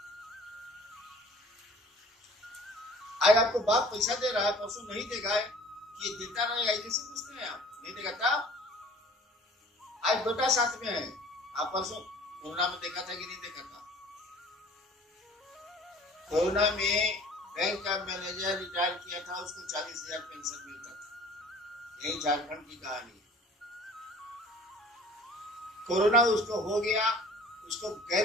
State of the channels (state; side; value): normal; both; correlation 0.48